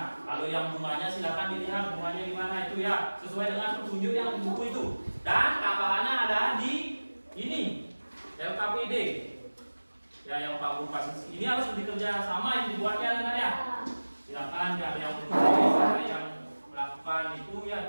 Kalau yang bunganya silakan dilihat bunganya di mana itu ya, sesuai dengan petunjuk yang di buku itu. Dan tambahannya ada di ini LKPD ya, yang Pak Guru kasih. Ini harus dikerja sama, yang dibuatnya dengan ya. Silakan ada yang menulis, ada yang melakukan itu ya,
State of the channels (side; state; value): both; inverted; correlation -1.00